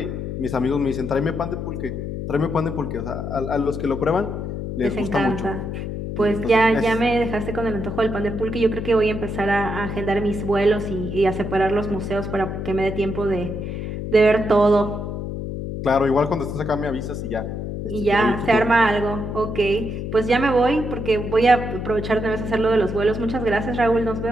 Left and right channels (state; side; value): noise; left; hum, 5 dB below the sound